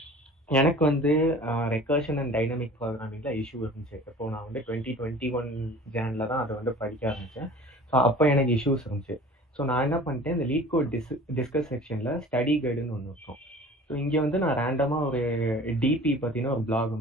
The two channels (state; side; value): normal; both; correlation 0.44